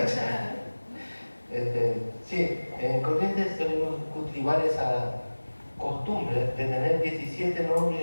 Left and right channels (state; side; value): inverted; both; correlation -1.00